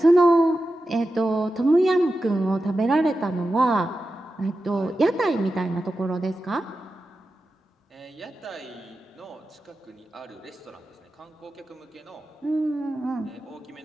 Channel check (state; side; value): normal; both; correlation 0.92